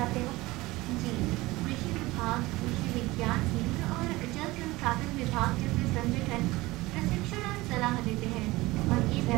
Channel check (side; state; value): left; quieter; 20.1 dB